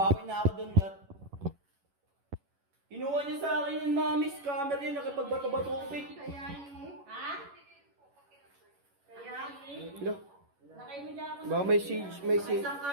na ako doon lahat. Kinuha niya sa akin yung mami scammer yun, nakipagbato-batupig. Kaya eh. Ha? Kaya? Hello? Lakay mo dyan ako. Baka may siege, may siege. Isang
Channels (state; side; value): late; left; 11 ms